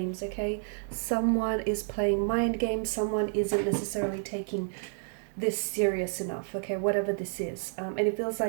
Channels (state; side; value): silent; left; 58 dB below the other